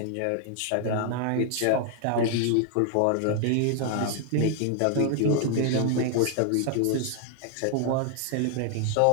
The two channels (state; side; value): different; both; correlation 0.00